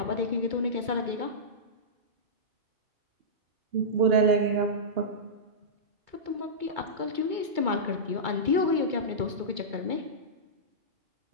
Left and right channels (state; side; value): late; left; 2.2 ms